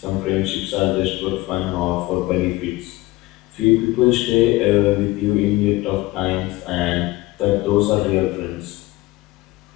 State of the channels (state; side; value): quieter; right; 19.6 dB